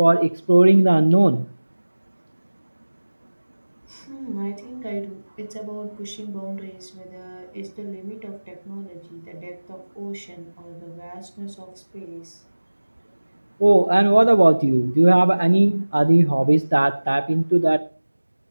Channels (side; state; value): both; inverted; correlation -1.00